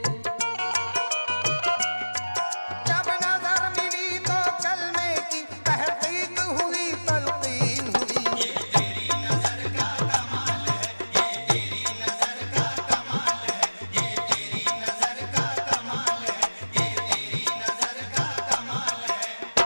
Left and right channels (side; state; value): both; inverted; correlation -1.00